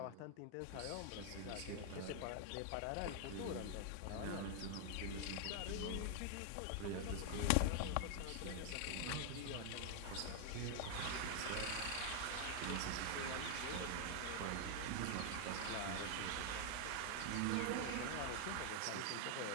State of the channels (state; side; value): different; both; correlation 0.00